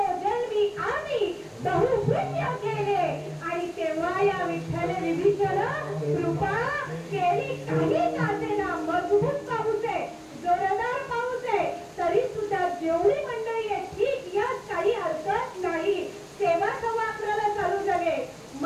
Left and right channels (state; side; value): identical; both; correlation 1.00